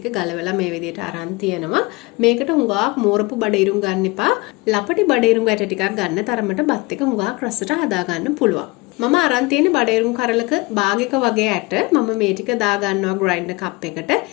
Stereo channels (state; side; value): quieter; right; 24.3 dB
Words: ගලවලා මේ විදිහට අරන් තියනවා. මේකට හුඟක් මෝරපු බඩීරුඟ ගන්න එපා. ලපටි බඩීරුඟ ඇට ටිකක් ගන්න තරමට බත් එක හුඟක් රසට හදාගන්න පුළුවන්. මම අරන් තියෙන්නේ බඩීරුඟ කරලක භාගයක වගේ ඇට. මම මේ ටික දා ගන්නවා ග්‍රයින්ඩර් කප් එකට.